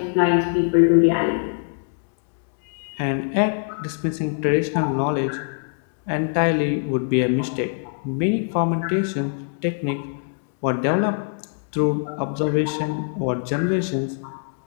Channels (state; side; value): silent; right; digital silence